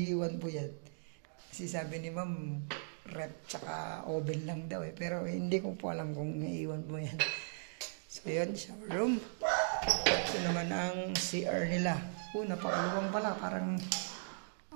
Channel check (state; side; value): silent; left; digital silence